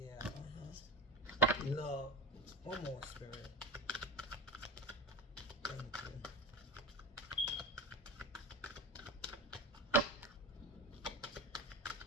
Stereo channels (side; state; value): both; normal; correlation 0.24